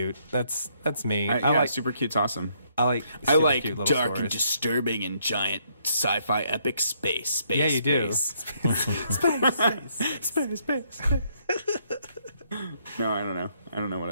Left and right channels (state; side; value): inverted; both; correlation -0.71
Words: That's me. I like super cute's awesome. I like I super like cute little dark stories. and disturbing and giant sci-fi epic space. Yeah, you do. Space. No, I don't know. I don't know what